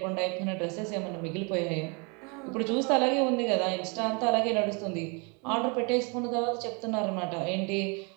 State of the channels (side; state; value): left; quieter; 32.7 dB